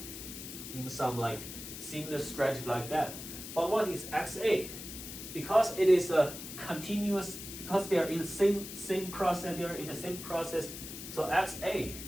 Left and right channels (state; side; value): noise; left; hiss, 10 dB below the sound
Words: in some like similar strategy like that. But what is xa? Because it is a continuous, because they are in the same process, they are in the same process. So xa